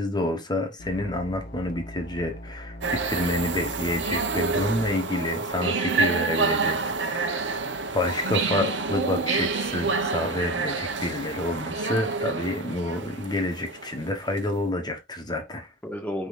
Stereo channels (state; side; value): normal; both; correlation 0.29